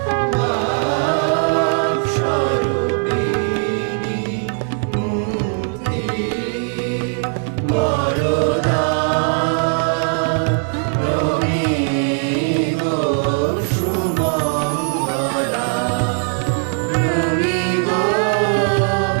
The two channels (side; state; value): left; silent; 55 dB below the other